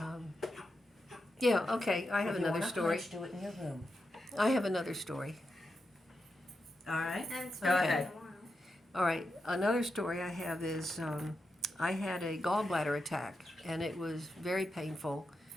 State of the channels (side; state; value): both; normal; correlation 0.87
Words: Yeah, okay. I have another story. Do it in your room. I have another story. All right. Go ahead. All right. Another story I have is I had a gallbladder attack, and it was very painful.